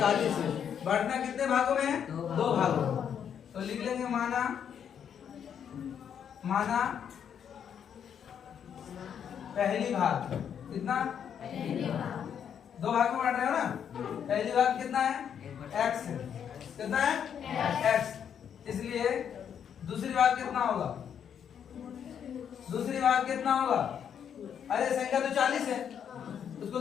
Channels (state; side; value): quieter; right; 8.3 dB